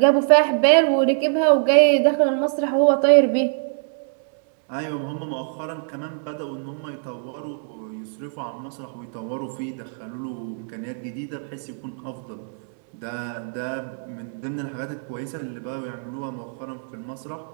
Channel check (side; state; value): left; silent; 63 dB below the other